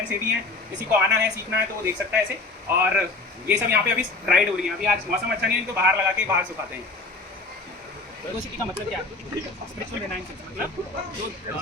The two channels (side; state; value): right; quieter; 3.6 dB